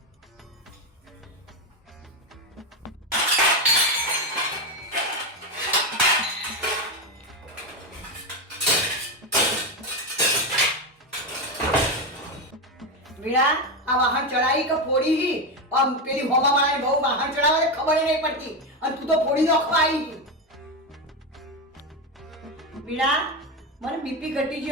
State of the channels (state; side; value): normal; both; correlation 0.12